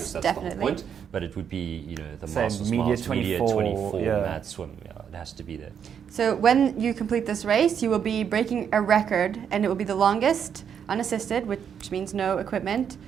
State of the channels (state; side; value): quieter; left; 7.9 dB